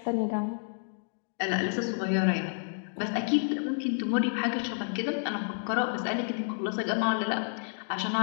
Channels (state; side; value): silent; right; digital silence